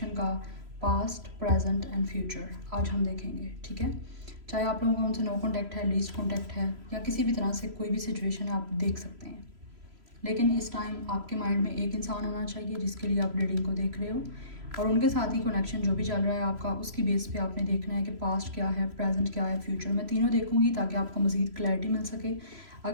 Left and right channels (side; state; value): left; late; 3.0 ms